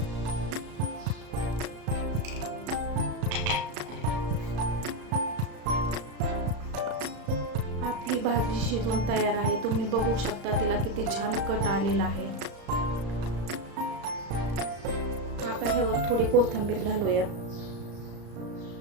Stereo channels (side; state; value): left; late; 35 ms